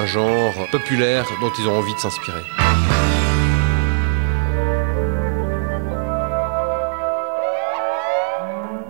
genre populaire dont ils ont envie de s'inspirer.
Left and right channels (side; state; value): left; silent; 62 dB below the other